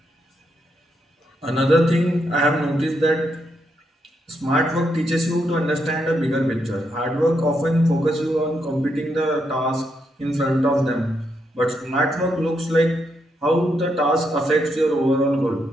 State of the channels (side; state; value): both; normal; correlation 0.80